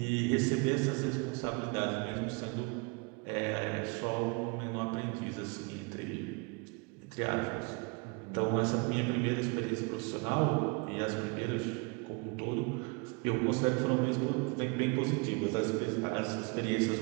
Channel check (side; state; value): left; quieter; 31.2 dB